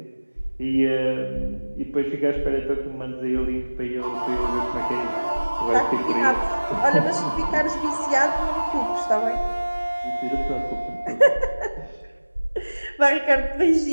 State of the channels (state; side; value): inverted; both; correlation -1.00